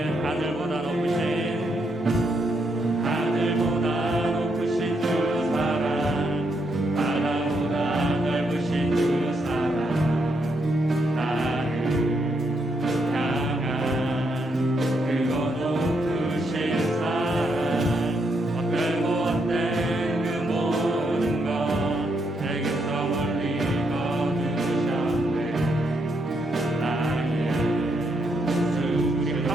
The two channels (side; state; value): both; normal; correlation 0.78